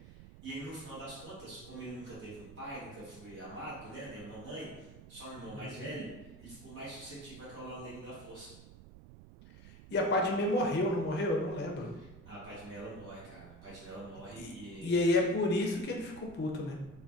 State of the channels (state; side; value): noise; right; rumble, 16 dB below the sound